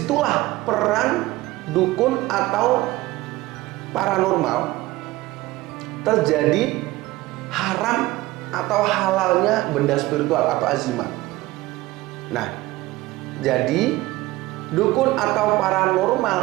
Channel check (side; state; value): left; quieter; 18.7 dB